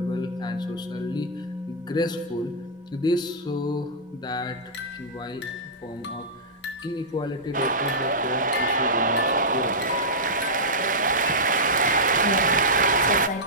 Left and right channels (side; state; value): both; normal; correlation -0.11